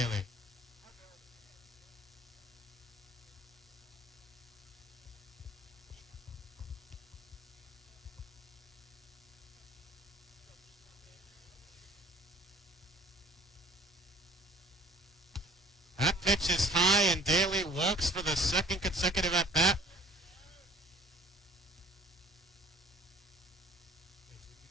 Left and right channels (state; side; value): normal; both; correlation 0.52